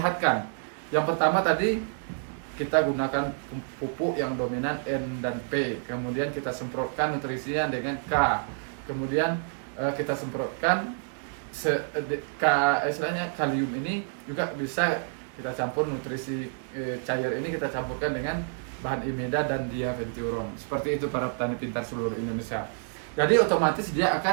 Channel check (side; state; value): left; silent; digital silence